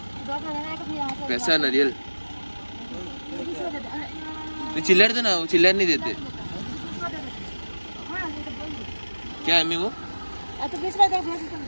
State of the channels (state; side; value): inverted; both; correlation -1.00